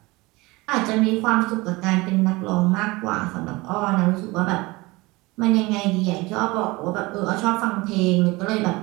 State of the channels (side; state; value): left; quieter; 22.6 dB